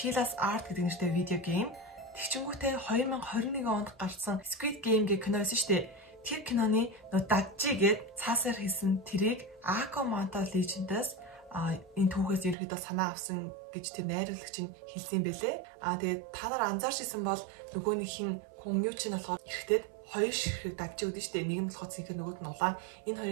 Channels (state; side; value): drops out; left; at 12.6 s